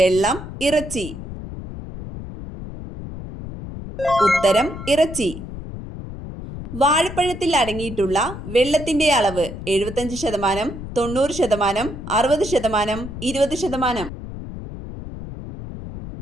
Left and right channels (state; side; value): noise; left; rumble, 10 dB below the sound